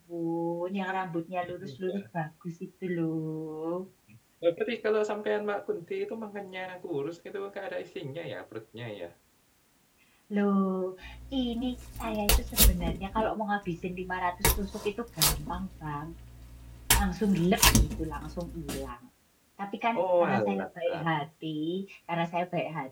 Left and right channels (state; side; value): identical; both; correlation 1.00